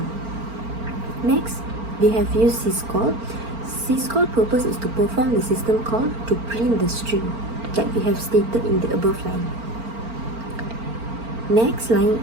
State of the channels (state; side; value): late; left; 4.4 ms